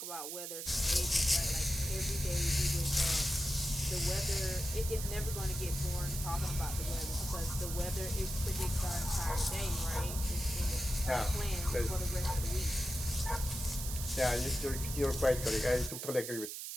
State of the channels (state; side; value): noise; right; hiss, 6 dB below the sound